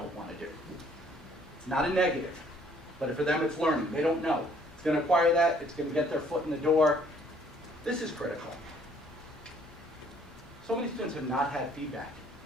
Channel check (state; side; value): normal; both; correlation 0.61